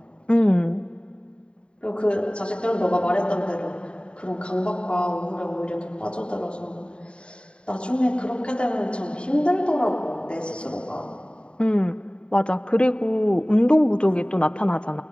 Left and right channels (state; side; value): late; right; 0.054 ms